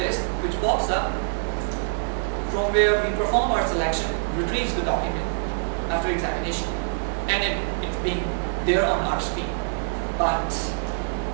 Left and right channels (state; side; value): silent; left; 58 dB below the other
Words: which pops up from where we perform our selection, retrieves the document after examination, and it's being there on our screen. But